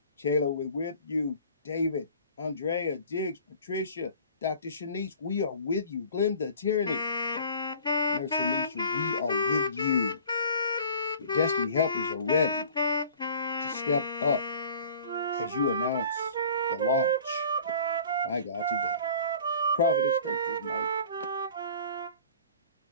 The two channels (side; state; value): both; inverted; correlation -0.46